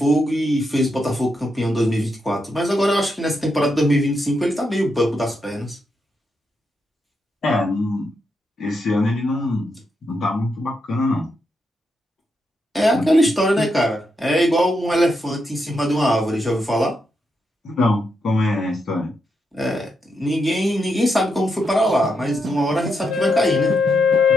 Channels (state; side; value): normal; both; correlation 0.82